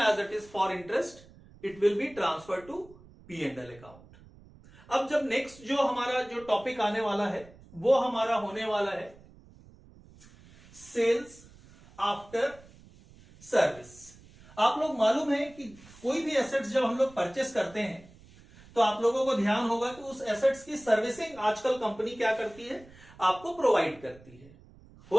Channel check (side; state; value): right; noise; rumble, 23 dB below the sound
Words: it is for interest, it will be transfer to P&L account. अब जब नेक्स्ट जो हमारा जो टॉपिक आने वाला है वो हमारा होने वाला है सेल्स आफ्टर सर्विस। आप लोग मालूम है कि कोई भी एसेट्स जब हम लोग परचेस करते हैं तो आप लोगों को ध्यान होगा कि उस एसेट्स की सर्विसिंग आजकल कंपनी क्या करती है, आपको प्रोवाइड करती है।